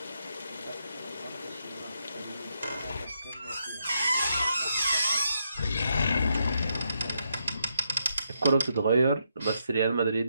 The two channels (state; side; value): inverted; both; correlation -0.80